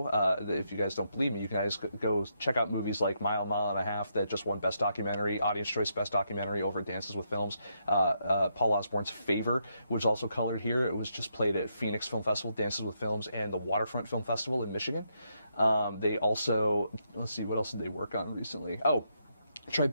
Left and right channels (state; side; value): inverted; both; correlation -0.78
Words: if you guys don't believe me, you guys go check out movies like Mile and a Half that just won Best Documentary, Audience Choice Best Documentary over at Dances with Films. Paul Osborne's Favor was also colored here. It was just played at Phoenix Film Festival, Dances with Films, and the Waterfront Film Festival in Michigan. They also, let's see, what else did they work on recently? Oh,